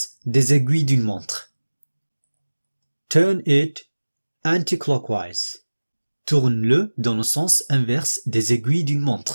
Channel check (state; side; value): inverted; both; correlation -1.00